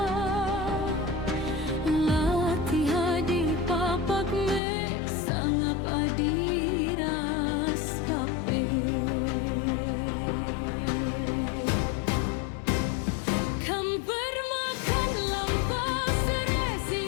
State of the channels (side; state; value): right; drops out; at 4.6 s